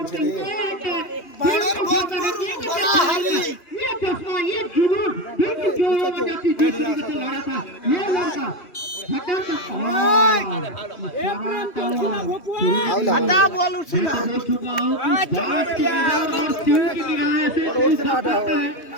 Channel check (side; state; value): right; late; 2.9 ms